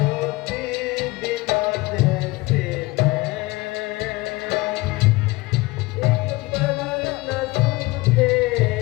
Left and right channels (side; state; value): right; quieter; 21.9 dB